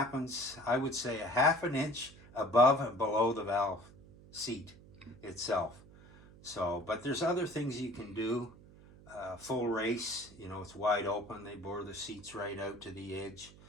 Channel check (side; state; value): right; noise; hum, 21 dB below the sound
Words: I would say, a half an inch above and below the valve seat itself. So, but there's other things you can do. Full race, you know, it's wide open. They bore the seats right out to the edge.